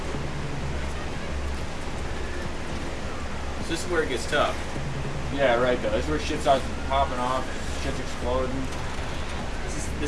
So this is where it gets tough. Yeah, right though. This is where shit starts popping off, shit's exploding.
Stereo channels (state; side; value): identical; both; correlation 1.00